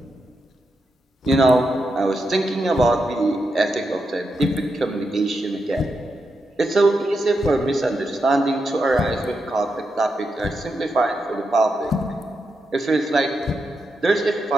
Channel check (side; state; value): both; normal; correlation 0.85